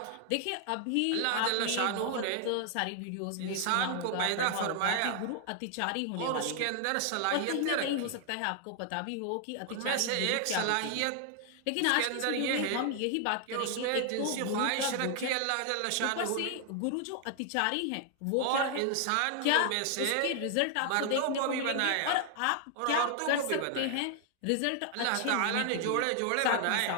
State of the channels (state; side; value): different; both; correlation 0.00